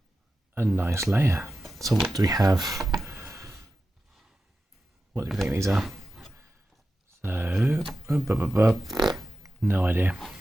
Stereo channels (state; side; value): normal; both; correlation 0.92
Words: a nice layer. So what do we have? What do you think these are? So no idea.